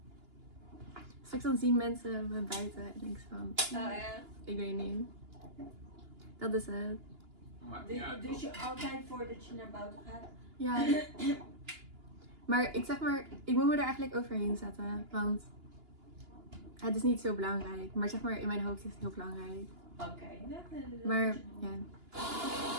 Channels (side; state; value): left; late; 2.9 ms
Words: Straks dan zien mensen me buiten en denk ik van, ik weet niet. Dat is het. Dus je altijd voordat je naar buiten gaat? Ja. Maar ik moet me er eigenlijk overheen zetten. Want het is niet zo belangrijk. Maar zeg maar, in mijn hoofd is het heel belangrijk. Oké. Maar ja.